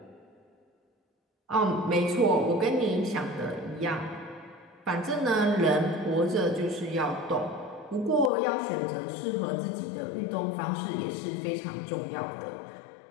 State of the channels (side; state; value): right; drops out; at 8.3 s